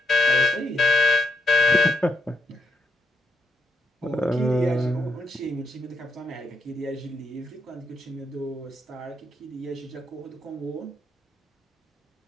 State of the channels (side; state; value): both; normal; correlation 0.79